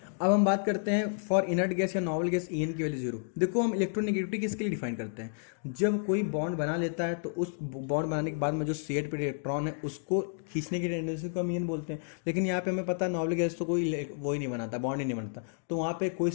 अब हम बात करते हैं फॉर इनर्ट गैस या नॉवल गैस ई एन की वैल्यू जीरो। देखो हम इलेक्ट्रोनेगेटिविटी किसके लिए डिफाइन करते हैं, जब कोई बॉन्ड बना लेता है तो उस बॉन्ड बनाने के बाद में जो शेड पे इलेक्ट्रॉन है उसको खींचने की टेंडेंसी को हम ई एन बोलते हैं। लेकिन यहाँ पे हमें पता है नॉवल गैस तो कोई वो ही नहीं बनाता, बॉन्ड ही नहीं बनता, तो वहाँ पे कोई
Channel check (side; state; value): right; silent; digital silence